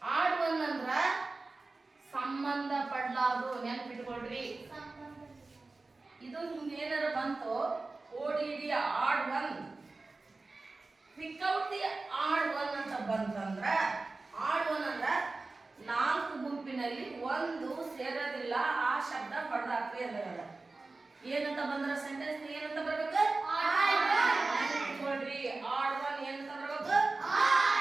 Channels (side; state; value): left; quieter; 3.5 dB